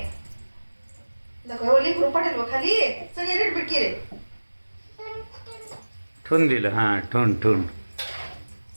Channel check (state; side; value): inverted; both; correlation -1.00